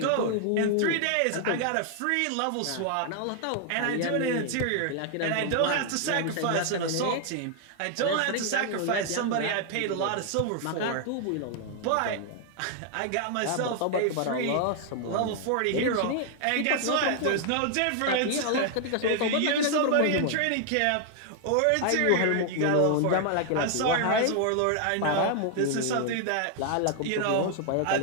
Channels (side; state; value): both; different; correlation 0.00